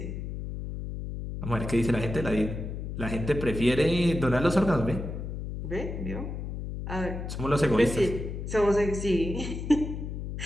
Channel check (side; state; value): left; noise; hum, 6 dB below the sound